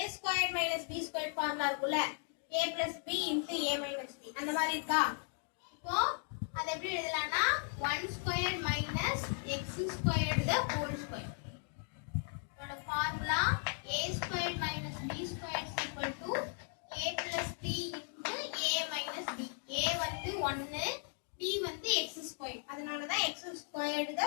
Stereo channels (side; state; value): right; silent; 53 dB below the other